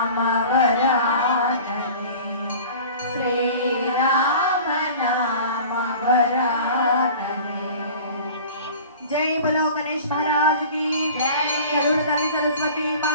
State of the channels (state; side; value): inverted; both; correlation -0.41